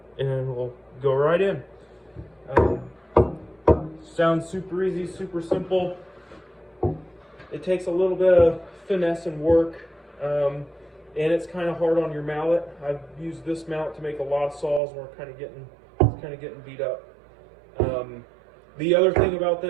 and we'll go right in. Sounds super easy, super simple. It takes a little bit of finesse and work, and it's kind of hard on your mallet. I've used this mallet to make a lot of saws, and we're kind of getting beat up. The other thing about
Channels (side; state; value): left; drops out; at 14.8 s